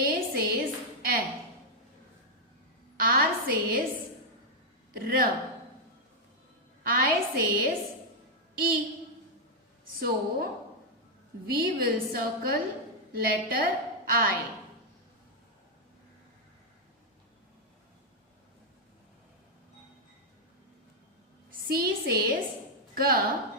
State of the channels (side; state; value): both; normal; correlation -0.03